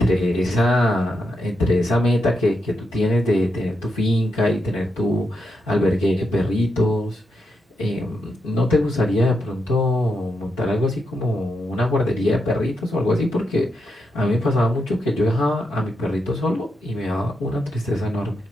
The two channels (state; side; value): normal; both; correlation 0.84